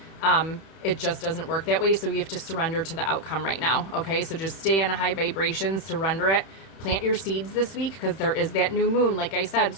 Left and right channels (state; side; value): late; right; 31 ms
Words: it just doesn't work that way. So you have to surrender to the outcome right now. Okay, so just stay on a high vibration, surrender it, plant your seeds this week because there is that new moon, like I said.